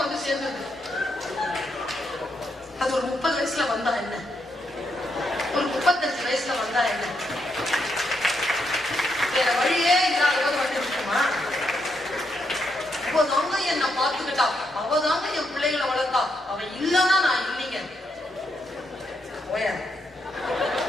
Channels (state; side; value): normal; both; correlation 0.80